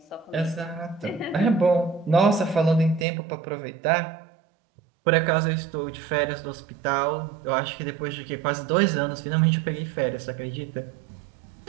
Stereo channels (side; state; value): left; drops out; at 3.1 s